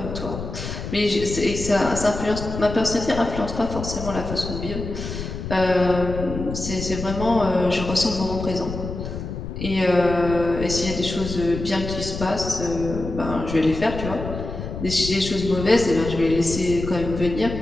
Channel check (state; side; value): noise; left; rumble, 7 dB below the sound